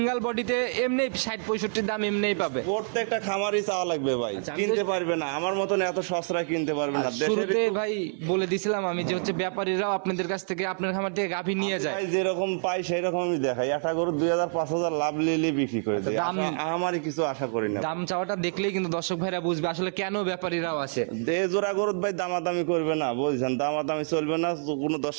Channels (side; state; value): left; silent; 60 dB below the other